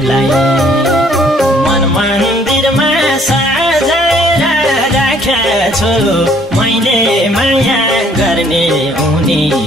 मन मन्दिरमा सजाएर राखेको छु मैले माया गर्ने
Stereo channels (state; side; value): normal; both; correlation 0.62